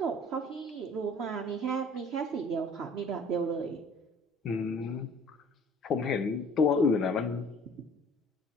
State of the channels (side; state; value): both; normal; correlation 0.51